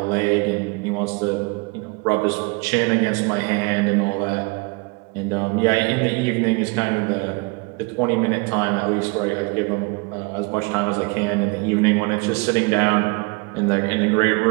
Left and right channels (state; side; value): quieter; left; 29.4 dB